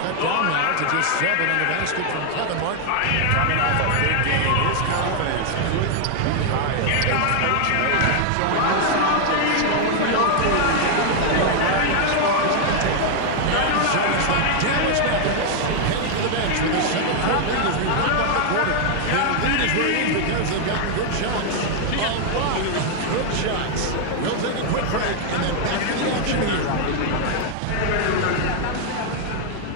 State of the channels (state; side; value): different; both; correlation 0.00